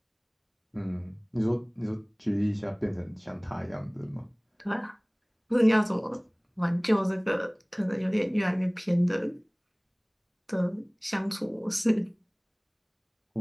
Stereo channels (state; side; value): identical; both; correlation 1.00